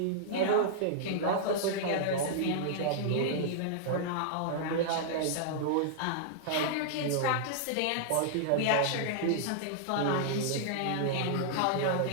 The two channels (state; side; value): different; both; correlation -0.01